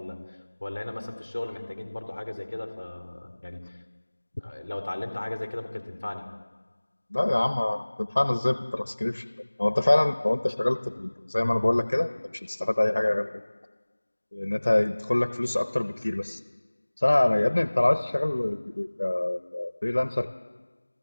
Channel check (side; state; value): both; inverted; correlation -1.00